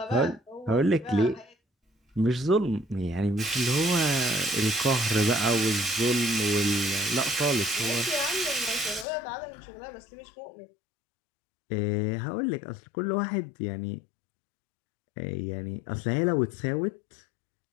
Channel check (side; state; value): right; drops out; at 9.1 s